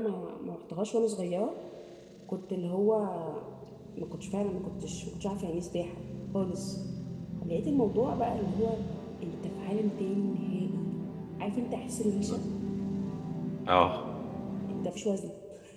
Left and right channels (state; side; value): identical; both; correlation 1.00